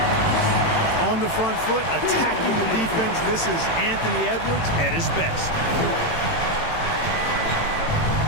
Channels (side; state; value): right; late; 18 ms